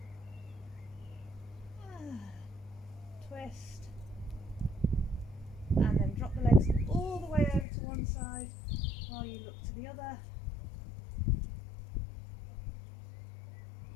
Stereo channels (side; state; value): right; drops out; at 7.7 s